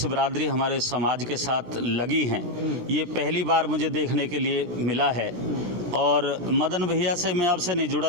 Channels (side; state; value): left; late; 17 ms